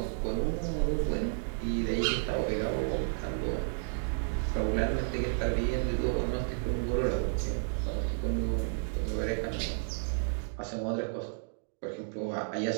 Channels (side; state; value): left; silent; digital silence